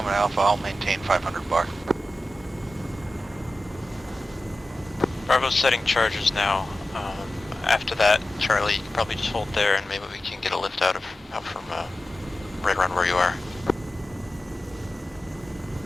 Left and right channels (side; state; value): both; normal; correlation 0.94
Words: to Alpha, I'll maintain 500 bar. Bravo's setting charges now. After that, Charlie, you can probably just hold there, and maybe we can get a lift out from right around where you are.